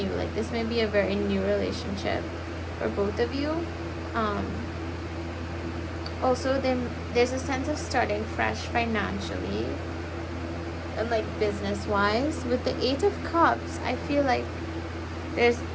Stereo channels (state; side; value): identical; both; correlation 1.00